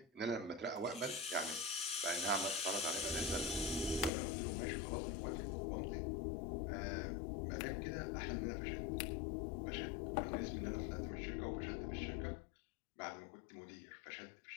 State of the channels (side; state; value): right; drops out; at 4.1 s